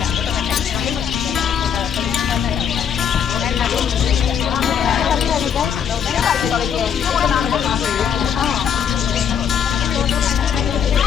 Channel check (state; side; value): quieter; right; 8.0 dB